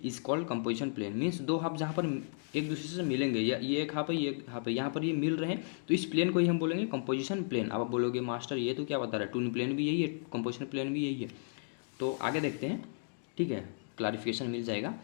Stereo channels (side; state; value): right; silent; digital silence